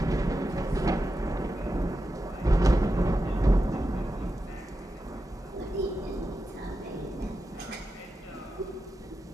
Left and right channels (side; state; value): both; normal; correlation 0.90